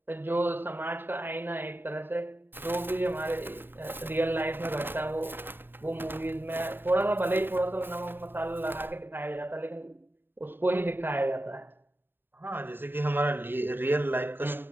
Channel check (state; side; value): late; left; 0.097 ms